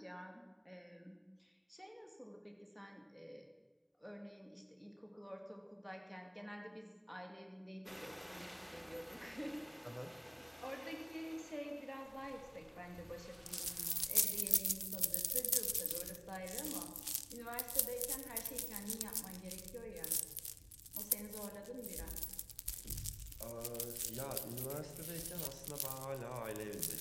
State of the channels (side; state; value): both; identical; correlation 1.00